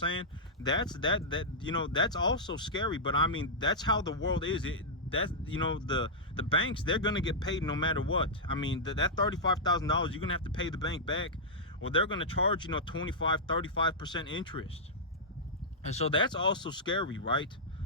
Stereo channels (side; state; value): both; normal; correlation -0.09